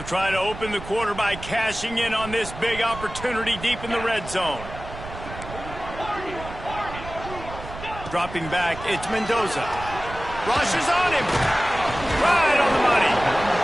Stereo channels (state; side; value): noise; right; rumble, 12 dB below the sound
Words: try to open the quarter by cashing in on this big opportunity deep in the red zone. Dropping back, it's Mendoza. Rushes on him. Right on the money.